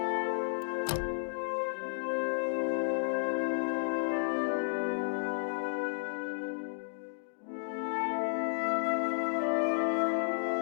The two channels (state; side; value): silent; right; digital silence